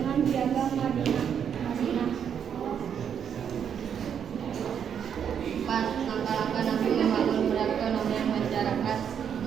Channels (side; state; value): left; quieter; 8.1 dB